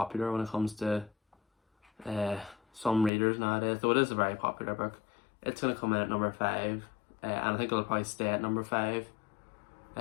when it comes to some readers nowadays. Though it is a very popular book. It's going to come in at number 5. And I think it'll probably stay at number 5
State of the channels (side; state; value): right; drops out; at 3.1 s